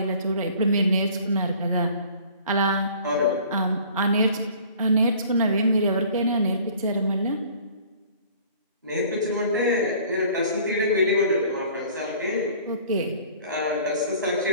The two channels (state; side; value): inverted; both; correlation -0.50